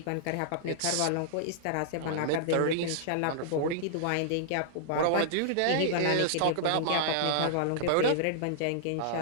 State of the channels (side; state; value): both; different; correlation -0.01